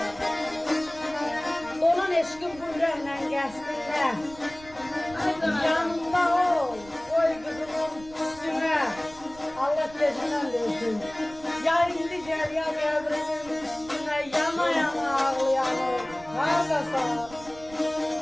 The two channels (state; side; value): noise; right; rumble, 20 dB below the sound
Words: Dolan eşkin bu yüreğle geçsinler. Yanımda ol, koy kızımın üstüne. Allah gecinden versin. Ya indi gel ya devrimin üstüne, yana yana ağlayanım, hardasan.